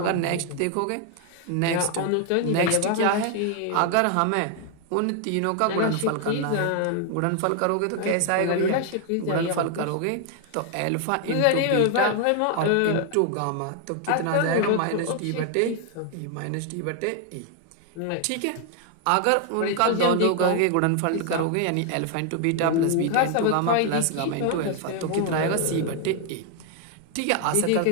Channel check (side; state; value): both; different; correlation 0.00